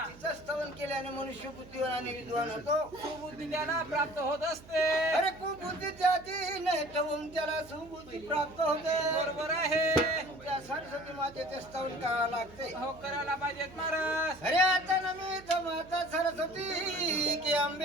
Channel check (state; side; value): noise; right; hum, 20 dB below the sound